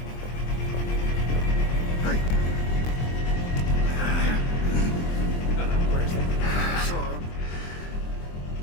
Where's that sword?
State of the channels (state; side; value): late; right; 23 ms